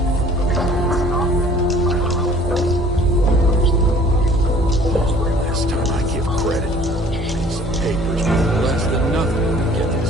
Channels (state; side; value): normal; both; correlation 0.52